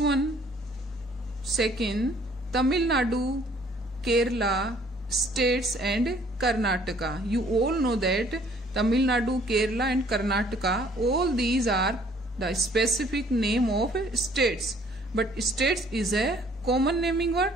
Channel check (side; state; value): both; normal; correlation 0.59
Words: second, Tamil Nadu, Kerala, states and Karnataka. You all know that Tamil Nadu, Kerala and Karnataka, all these are the specific name of states. But states is a common naming word,